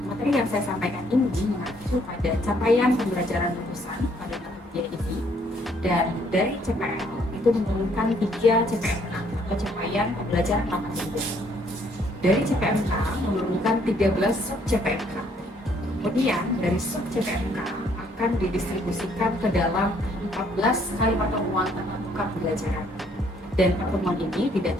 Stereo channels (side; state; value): both; normal; correlation 0.66